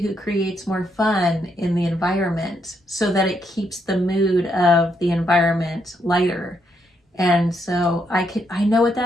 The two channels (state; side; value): normal; both; correlation 0.77